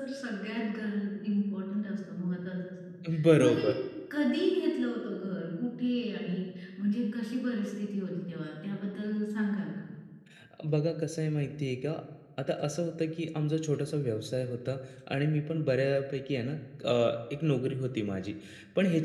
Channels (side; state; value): both; identical; correlation 1.00